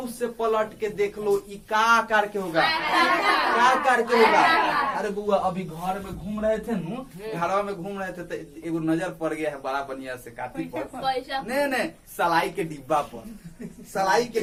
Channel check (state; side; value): identical; both; correlation 1.00